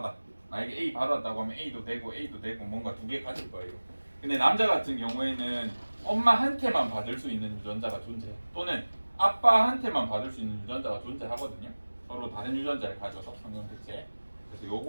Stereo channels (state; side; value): inverted; both; correlation -1.00